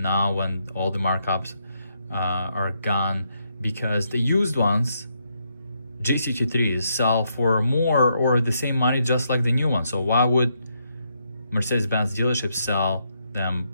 now when all the markups are gone, because the used ones, GCT3s, sell for more or the same money just like the new ones. So why would Mercedes-Benz dealerships sell them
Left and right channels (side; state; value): both; inverted; correlation -0.78